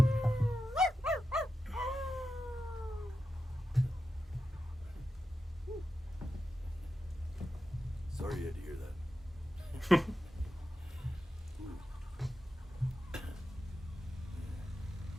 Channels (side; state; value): both; normal; correlation 0.90